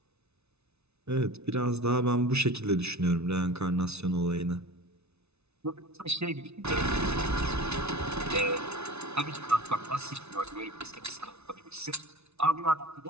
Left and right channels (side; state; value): left; late; 0.81 ms